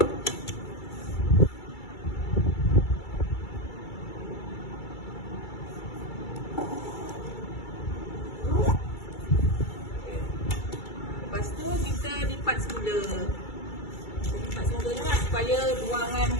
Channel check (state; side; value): late; right; 2.3 ms